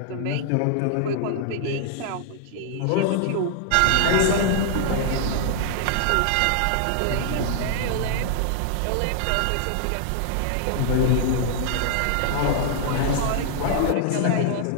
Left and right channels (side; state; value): both; different; correlation -0.01